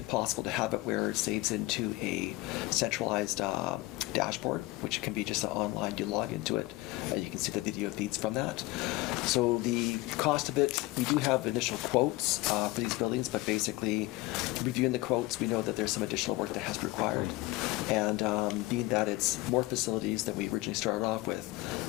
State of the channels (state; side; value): quieter; right; 20.3 dB